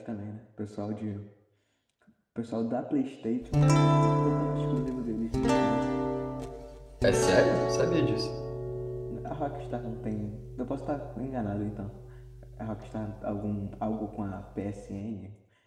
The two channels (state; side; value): identical; both; correlation 1.00